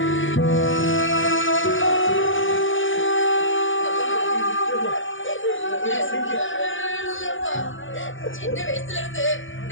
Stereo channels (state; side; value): late; right; 0.57 ms